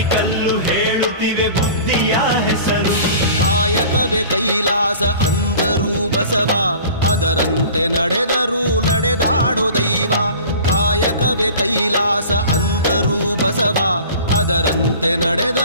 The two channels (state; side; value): inverted; both; correlation -0.42